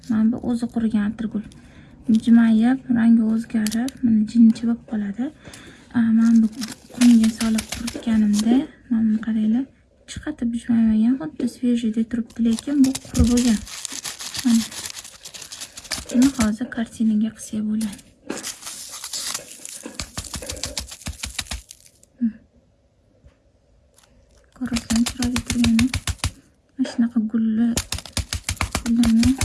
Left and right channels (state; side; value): identical; both; correlation 1.00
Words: bu o'zi qurigan atirgul. Bijmayib, rangi o'zgarib, mana jinchi bo'lib qoladi. Men bu qumga solib quritganimda, mana qaranglar, chiqatib bijmaymagan, xuddi svejiyda turibdi, lekin bu qurib bo'lgan. Mana buni hozir kartinaga qilsak bo'ladi. Ko'rasizlar, chiroyli turgani. Mana shunaqa gullarni